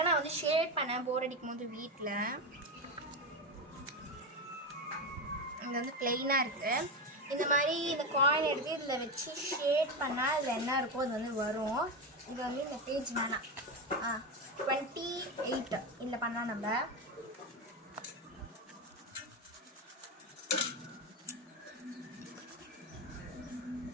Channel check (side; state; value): both; normal; correlation 0.15